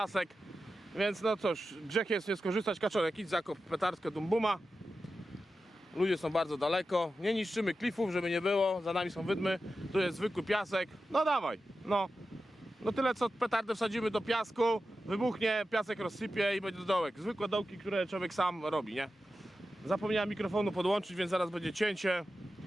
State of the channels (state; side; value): normal; both; correlation 0.92